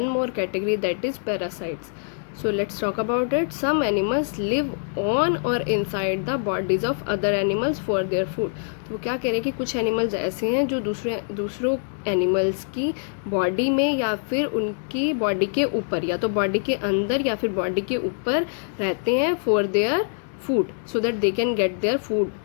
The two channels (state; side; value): silent; right; digital silence